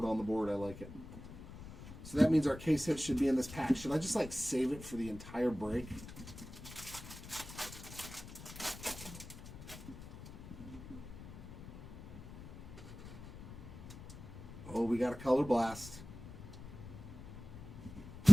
on the board, I like it. So that means our case hit should be in this pack. Should I just save it for the entire break? Oh, we got a color blast.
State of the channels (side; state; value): left; noise; rumble, 12 dB below the sound